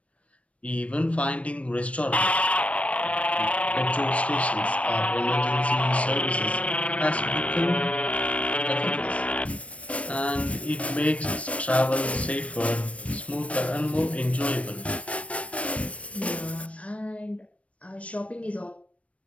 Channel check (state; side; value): late; right; 0.064 ms